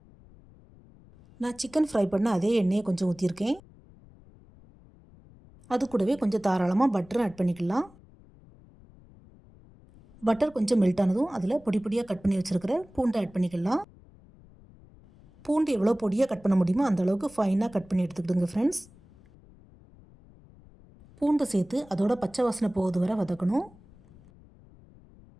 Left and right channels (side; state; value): left; noise; rumble, 25 dB below the sound